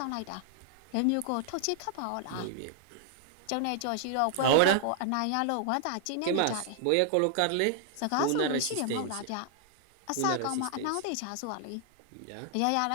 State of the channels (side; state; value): both; different; correlation 0.00